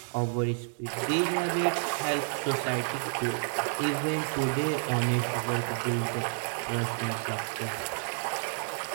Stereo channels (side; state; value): left; silent; digital silence